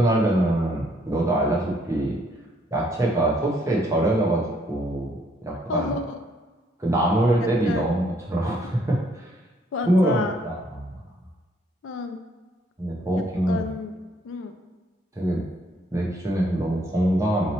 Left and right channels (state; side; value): normal; both; correlation 0.68